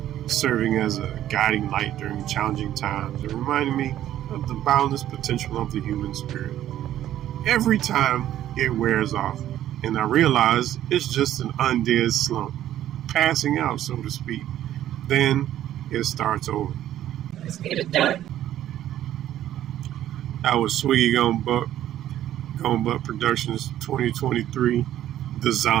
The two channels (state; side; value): quieter; left; 12.2 dB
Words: serving as a guiding light during challenging times and reminding me of the boundless potential of the human spirit. Every time it wears off, and I realize it's just an undead slump, passing out, so to speak. Then it starts over. Let's get it done. That was Swegi Gone Buck Productions 2023, The